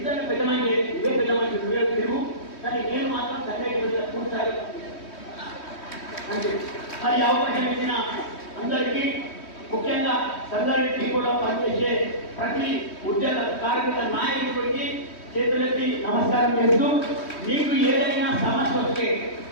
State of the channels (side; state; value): right; late; 3.1 ms